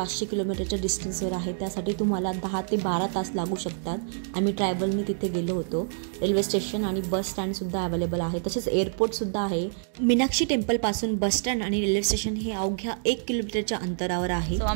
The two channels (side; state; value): left; silent; digital silence